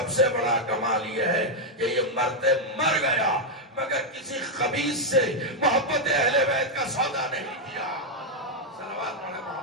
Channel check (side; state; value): both; normal; correlation 0.00